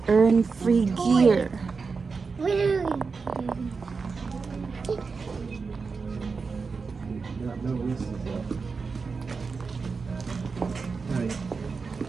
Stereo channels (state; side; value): quieter; left; 4.8 dB